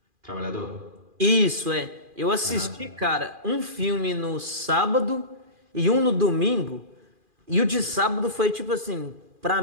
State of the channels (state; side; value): late; left; 2.4 ms